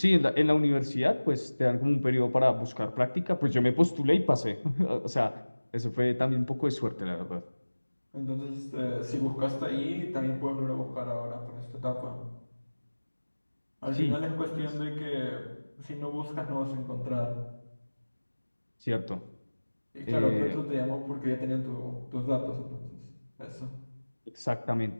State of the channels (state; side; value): inverted; both; correlation -1.00